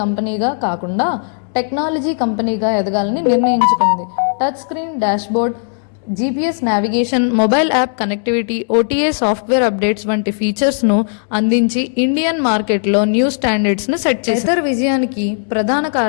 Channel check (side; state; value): right; silent; 61 dB below the other